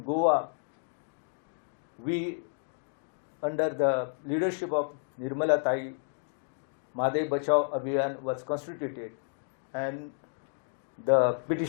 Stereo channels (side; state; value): right; silent; digital silence